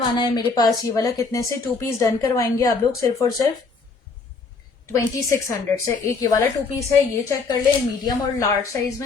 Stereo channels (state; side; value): quieter; right; 4.4 dB